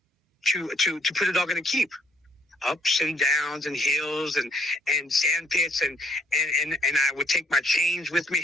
to put a dog in a keep. Ups and downs and hills and sand pits and I would take my chains with me,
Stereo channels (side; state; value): both; normal; correlation 0.67